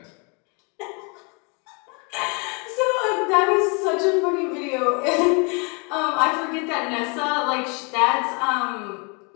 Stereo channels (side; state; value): right; quieter; 33.4 dB